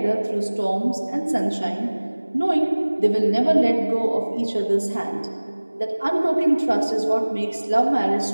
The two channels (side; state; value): both; inverted; correlation -1.00